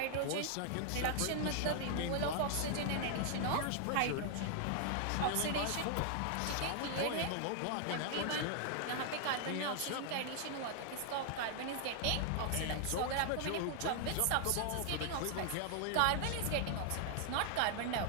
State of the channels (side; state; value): both; different; correlation 0.00